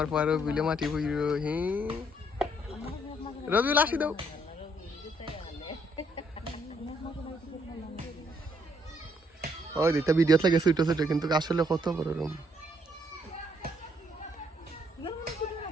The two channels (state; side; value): normal; both; correlation 0.70